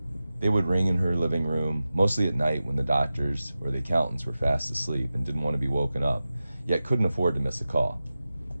They would ring in her living room, mostly at night when the doctors or the accountants were fast asleep and didn't want to be woken up, yet couldn't afford to miss a call.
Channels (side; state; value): both; inverted; correlation -0.94